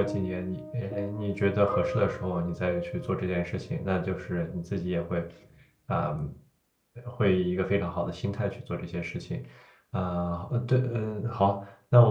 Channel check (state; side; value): identical; both; correlation 1.00